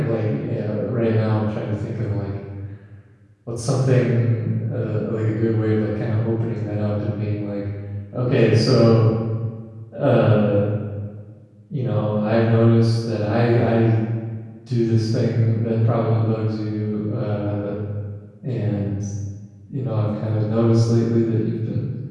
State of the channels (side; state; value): both; identical; correlation 1.00